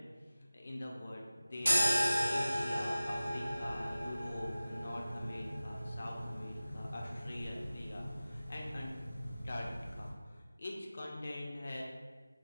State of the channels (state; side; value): inverted; both; correlation -0.97